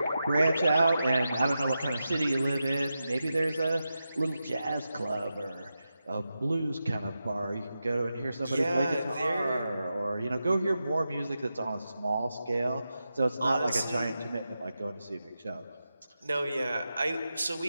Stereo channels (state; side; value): inverted; both; correlation -0.90